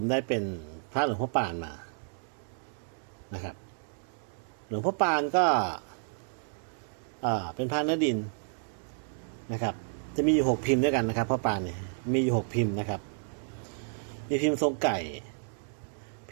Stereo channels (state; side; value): silent; left; digital silence